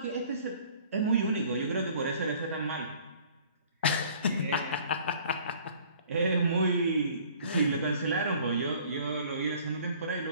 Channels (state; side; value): inverted; both; correlation -0.53